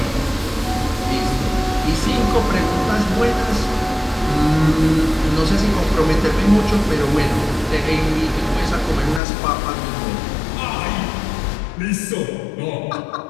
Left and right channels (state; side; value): drops out; right; at 9.2 s